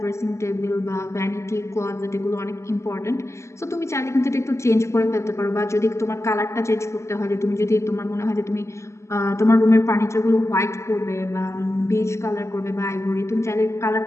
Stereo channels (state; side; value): late; right; 0.14 ms